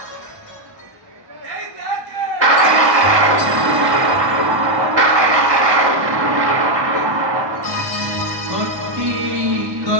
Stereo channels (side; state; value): left; late; 1.1 ms